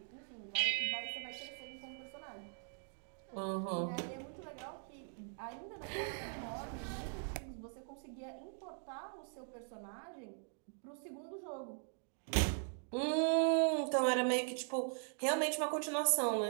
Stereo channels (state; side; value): silent; left; 51 dB below the other